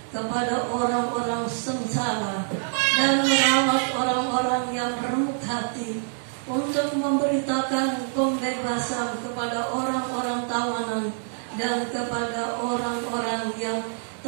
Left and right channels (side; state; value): left; silent; digital silence